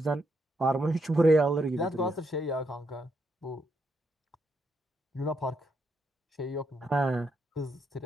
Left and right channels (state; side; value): normal; both; correlation 0.78